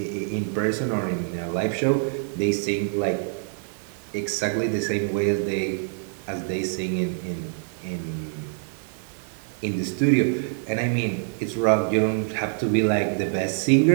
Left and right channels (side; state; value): left; silent; digital silence